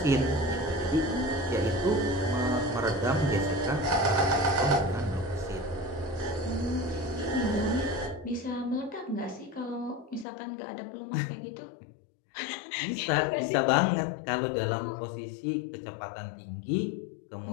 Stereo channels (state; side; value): drops out; right; at 10.2 s